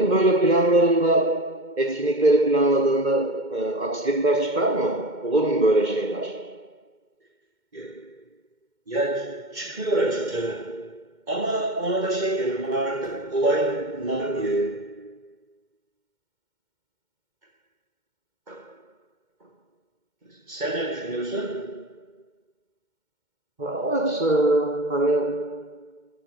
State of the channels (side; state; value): left; late; 2.1 ms